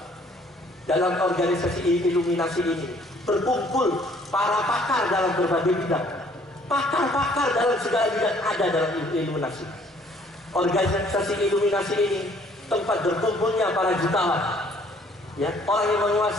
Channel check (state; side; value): normal; both; correlation 0.60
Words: Dalam organisasi Illuminasi ini berkumpul para pakar dalam berbagai bidang. Pakar-pakar dalam segala bidang ada dalam Illuminasi. Organisasi Illuminasi ini tempat berkumpulnya para jutawan, ya, orang yang